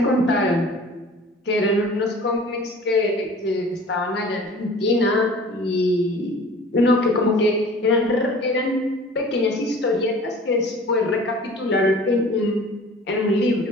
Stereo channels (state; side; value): normal; both; correlation 0.45